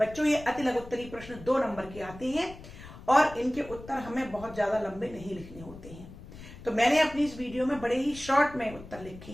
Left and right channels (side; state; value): left; noise; rumble, 16 dB below the sound